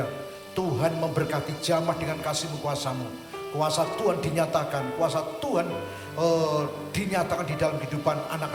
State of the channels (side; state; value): both; identical; correlation 1.00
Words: Tuhan memberkati, jamah dengan kasih-Mu, kuasa-Mu. Kuasa Tuhan dinyatakan, kuasa Tuhan dinyatakan di dalam kehidupan